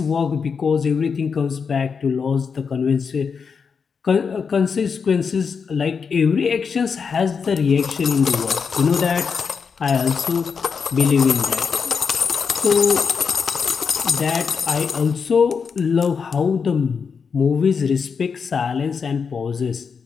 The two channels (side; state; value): right; quieter; 5.9 dB